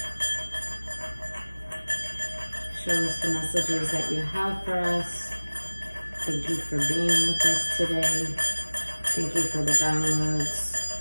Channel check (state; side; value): inverted; both; correlation -1.00